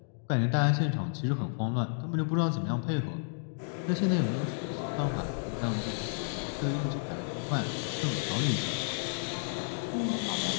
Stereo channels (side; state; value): right; silent; digital silence